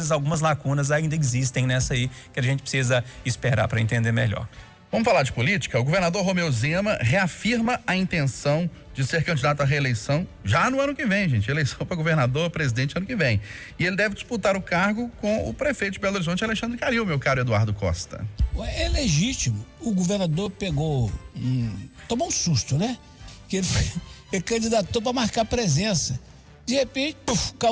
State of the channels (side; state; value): both; identical; correlation 1.00